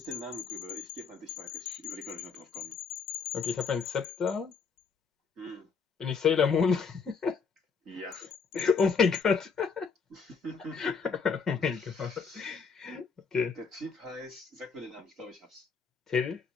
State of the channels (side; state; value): right; quieter; 5.5 dB